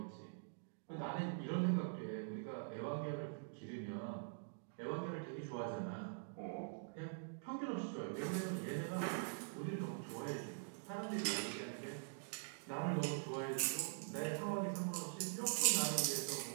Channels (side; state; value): left; silent; digital silence